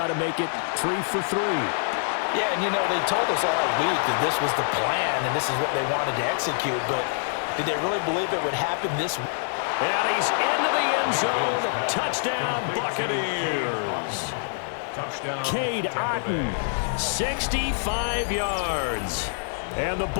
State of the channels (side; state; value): right; silent; digital silence